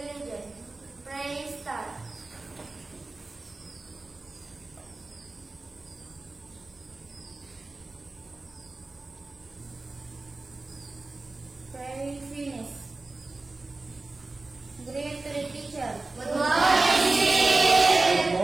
Pray start. Pray finish. Greet to the teacher. Good morning. Good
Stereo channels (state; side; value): quieter; left; 3.3 dB